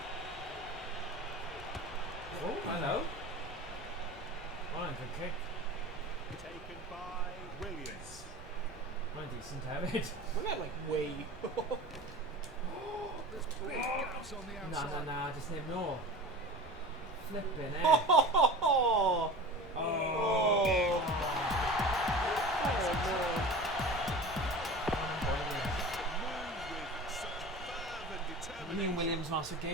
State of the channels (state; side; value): noise; right; rumble, 18 dB below the sound